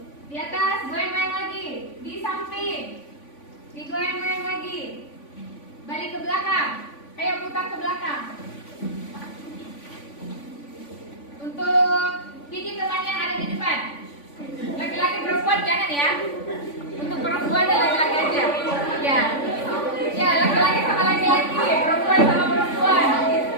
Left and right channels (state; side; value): late; right; 3.5 ms